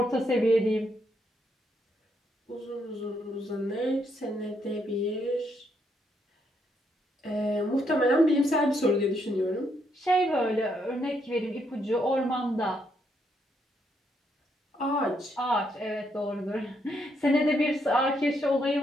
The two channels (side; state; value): both; normal; correlation 0.75